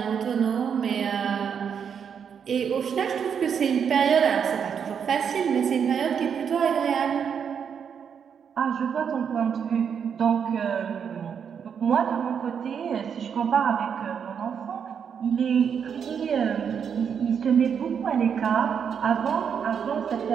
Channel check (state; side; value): quieter; left; 7.3 dB